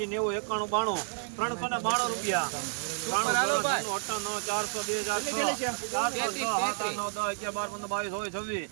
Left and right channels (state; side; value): silent; left; 57 dB below the other